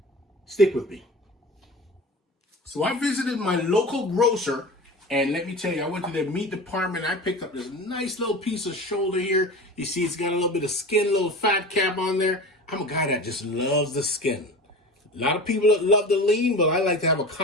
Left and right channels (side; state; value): both; normal; correlation 0.33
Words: Stick with me. So I visited my local grocer, and let me tell you, I went to their meat department. I picked up this nice little piece of shoulder here. You see it's got a little bit of skin, a little fat cap on there. I'm a guy that just loves the skin. A lot of people love the lean, but I like to have a